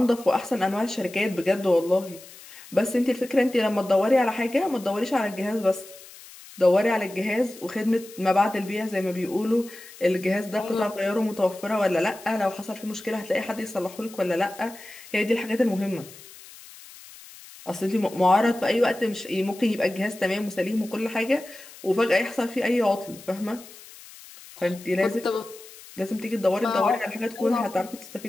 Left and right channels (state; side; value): noise; left; hiss, 19 dB below the sound